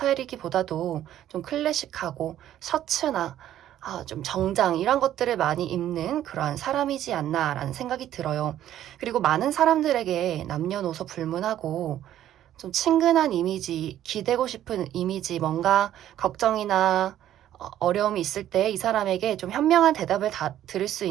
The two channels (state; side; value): quieter; left; 12.0 dB